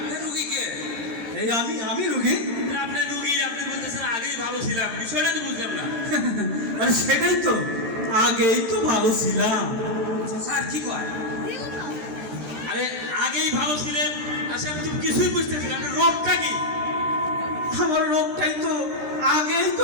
রুগী কে? এই আমি রুগী। আপনি রুগী, আপনি বলতেছেন আগেই ভালো ছিলাম, বিষয়টা তো বুঝলাম না। আরে সেটাই তো, আগেই তো ভালো ছিলাম। স্যার কি কয়? আরে আগেই ভালো ছিলেন, আচ্ছা আমি তো কিছুই বুঝতেছি না, আপনার রোগটা কি? আমার রোগটাই তো, আগেই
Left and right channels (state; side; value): late; left; 13 ms